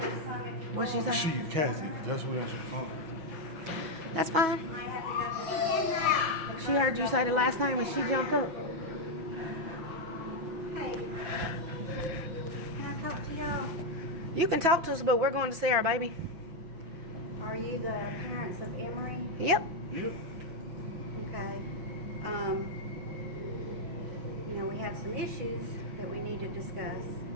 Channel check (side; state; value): left; late; 6.1 ms